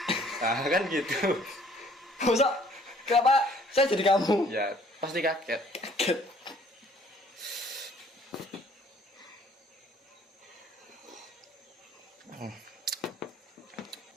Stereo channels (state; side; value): normal; both; correlation 0.58